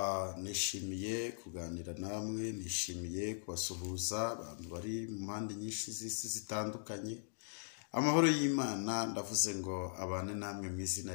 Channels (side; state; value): right; silent; digital silence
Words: Nishimiye kuganira namwe, nishimiye kubasuhuza abantu bari mu mpande nyinshi z'isi zitandukanye. Amahoro y'Imana ndavuze ngo abane namwe mu izina